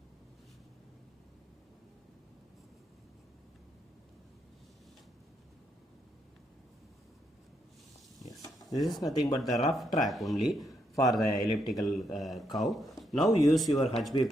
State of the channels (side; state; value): both; normal; correlation 0.78